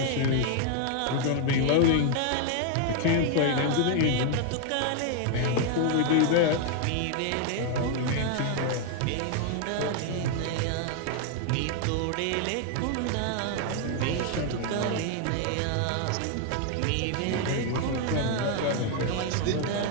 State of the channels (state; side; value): different; both; correlation 0.00